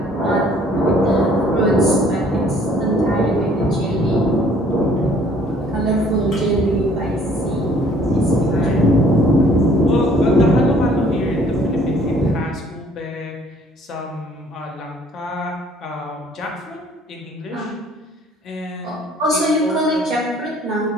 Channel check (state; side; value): normal; both; correlation 0.58